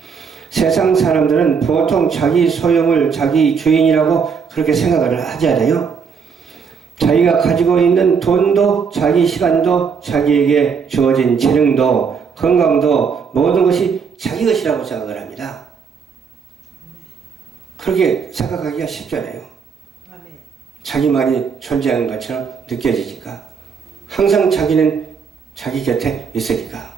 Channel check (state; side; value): quieter; left; 6.1 dB